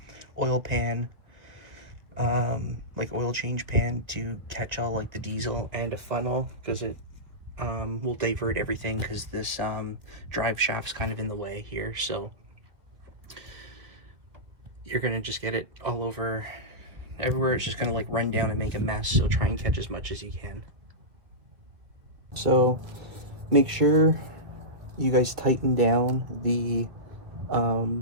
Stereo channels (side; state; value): left; late; 2.1 ms